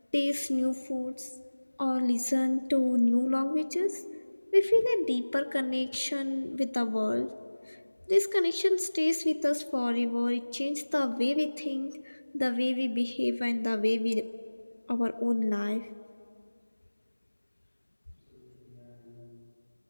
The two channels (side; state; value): both; inverted; correlation -1.00